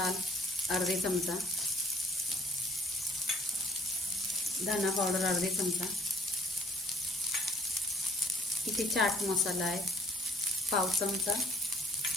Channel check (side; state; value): both; normal; correlation 0.59